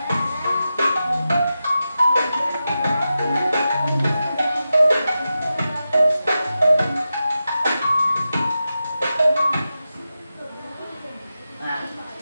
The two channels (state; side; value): inverted; both; correlation -0.91